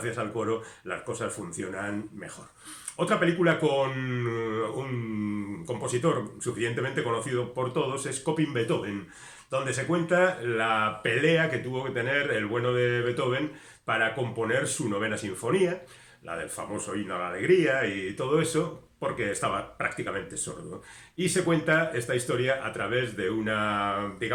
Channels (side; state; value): both; identical; correlation 1.00